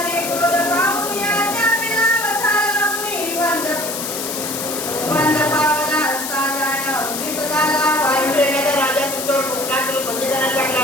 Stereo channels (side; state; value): left; noise; hiss, 5 dB below the sound